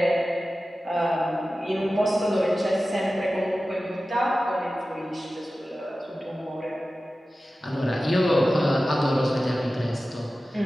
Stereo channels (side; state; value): both; normal; correlation 0.95